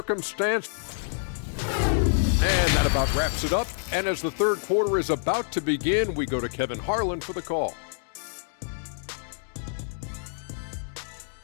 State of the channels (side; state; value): right; silent; digital silence